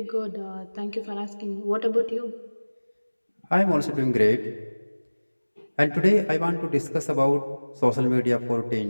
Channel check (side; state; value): both; inverted; correlation -1.00